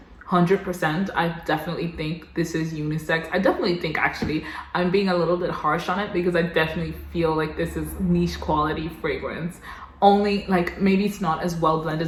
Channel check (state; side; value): identical; both; correlation 1.00